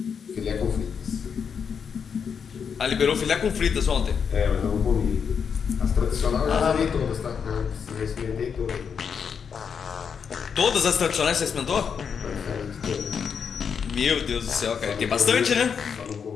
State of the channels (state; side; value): quieter; right; 6.7 dB